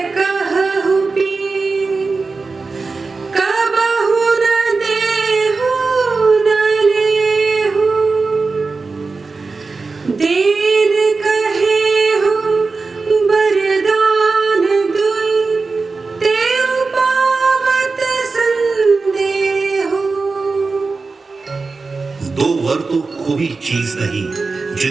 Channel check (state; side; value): quieter; left; 4.1 dB